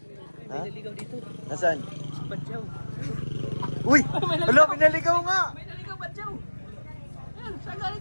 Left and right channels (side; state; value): both; inverted; correlation -1.00